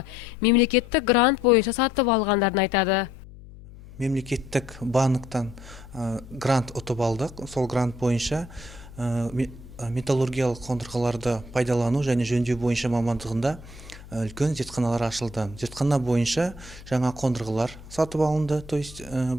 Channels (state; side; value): noise; left; hum, 18 dB below the sound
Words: мемлекеттік грант бойынша сатып алғандарын айтады. Мемлекеттік банктан грант ұтып алдық. Сол грант бойынша металлургиялық қондырғыларды пайдалану және жөндеу бойынша мамандығында үлкен зертханалар ашылды. Зертхана бойынша жаңа қондырғылар сатып алынды. То есть